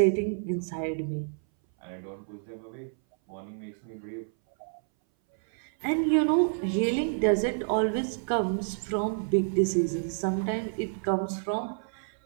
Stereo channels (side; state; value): left; silent; 59 dB below the other